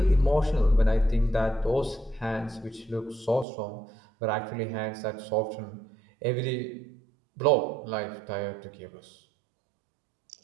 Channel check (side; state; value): left; drops out; at 3.5 s